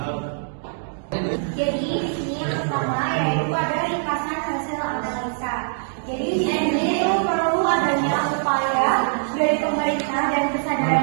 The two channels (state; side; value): silent; left; digital silence